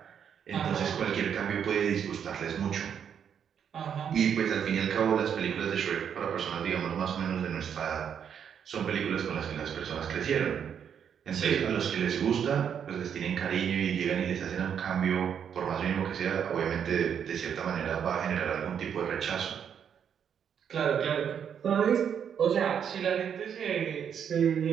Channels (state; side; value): quieter; left; 8.1 dB